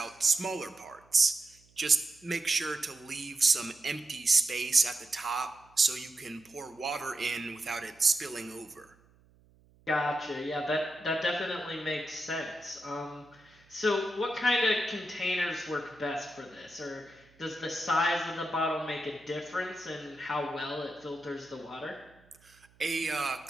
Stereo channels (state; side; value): noise; right; hum, 30 dB below the sound